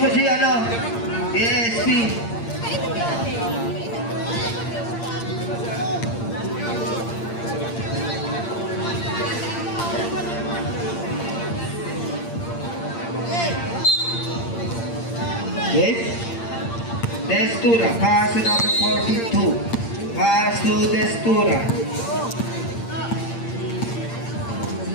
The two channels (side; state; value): right; late; 8.7 ms